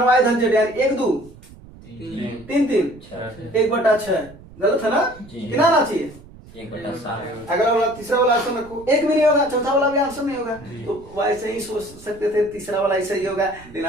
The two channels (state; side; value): noise; right; rumble, 21 dB below the sound